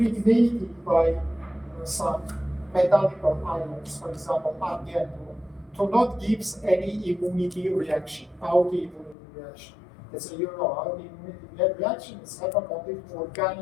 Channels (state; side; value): drops out; right; at 9.2 s